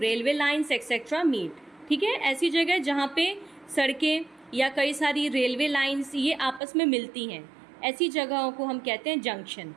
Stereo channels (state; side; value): drops out; left; at 6.6 s